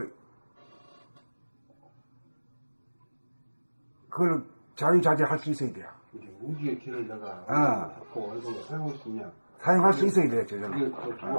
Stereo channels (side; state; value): both; inverted; correlation -1.00